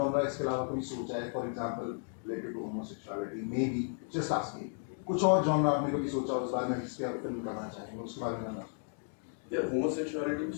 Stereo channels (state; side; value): silent; right; 55 dB below the other